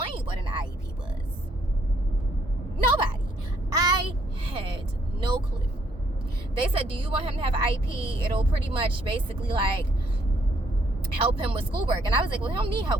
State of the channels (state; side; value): normal; both; correlation 0.69